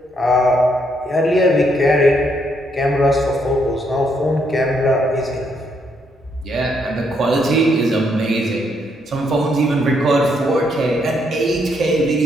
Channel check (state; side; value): normal; both; correlation 0.74